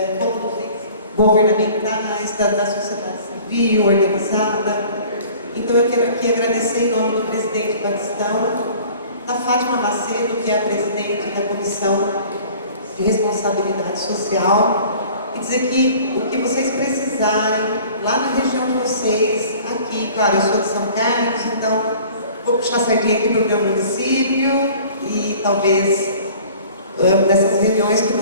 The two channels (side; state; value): both; inverted; correlation -0.48